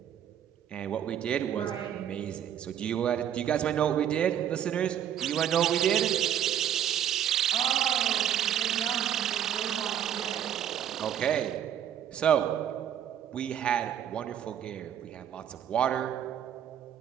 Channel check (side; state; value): left; quieter; 9.8 dB